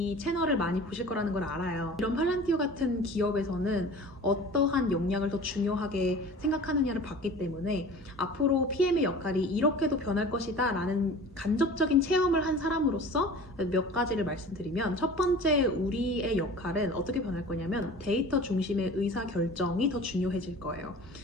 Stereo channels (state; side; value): normal; both; correlation 0.41